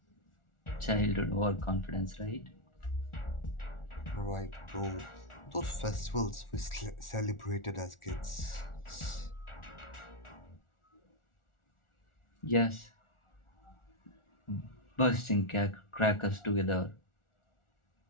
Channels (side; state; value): right; late; 1.4 ms